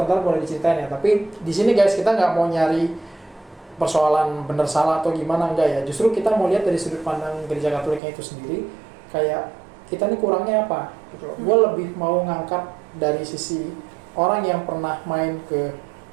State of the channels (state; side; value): drops out; left; at 8.0 s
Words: ntar boleh diceritain ya. Tapi di sini guys kita nggak mau nyari persoalan benar salah atau gimana, enggak ya. Justru kita mau lihat dari sudut pandang gereja Katoliknya itu sendiri, kayak kita nih kurangnya apa gitu. Gue lebih mau ngangkat dari sisi orang yang pernah main ke